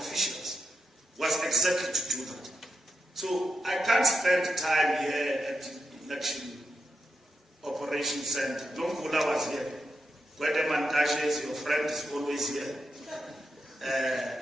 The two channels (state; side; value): normal; both; correlation 0.86